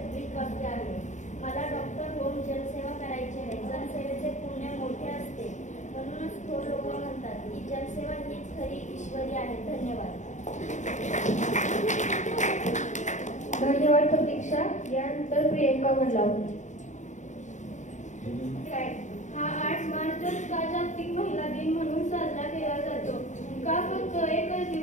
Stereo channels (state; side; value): late; right; 0.35 ms